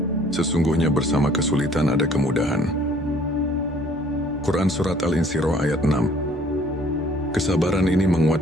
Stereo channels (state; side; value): normal; both; correlation 0.57